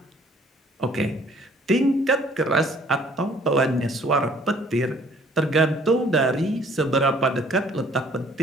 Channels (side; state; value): both; normal; correlation 0.58